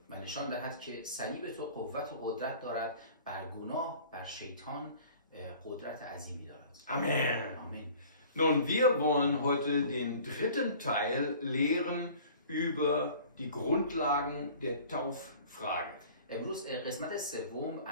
و نشان دهد که صلیب تو قوت و قدرت دارد بر گناه، بر شیطان قدرت عظیمی دارد. Amen. آمین. Nun, wir wollen heute den dritten Teil lehren über die Grundlagen der Tauffrage. امروز قسمت سوم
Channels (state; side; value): inverted; both; correlation -0.47